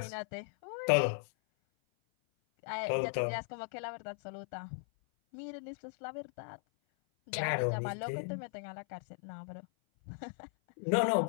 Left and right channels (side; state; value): right; silent; 53 dB below the other